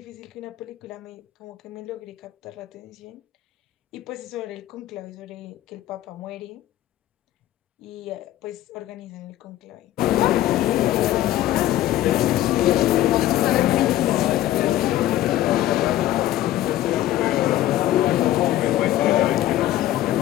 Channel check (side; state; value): right; quieter; 14.0 dB